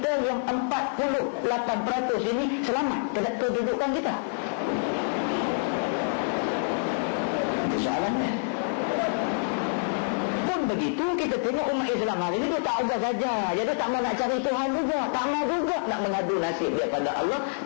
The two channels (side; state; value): right; silent; 60 dB below the other